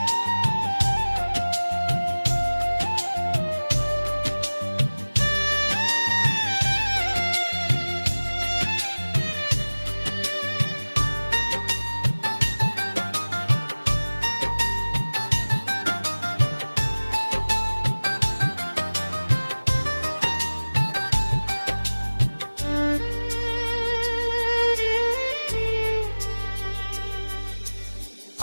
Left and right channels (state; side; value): inverted; both; correlation -1.00